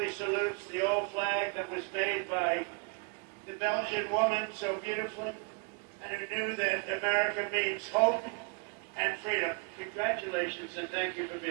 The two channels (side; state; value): left; quieter; 34.0 dB